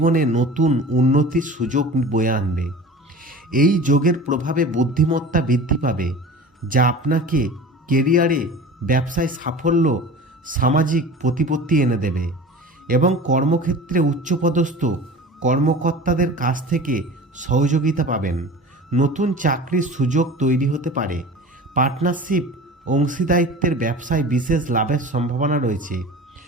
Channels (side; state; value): both; normal; correlation 0.38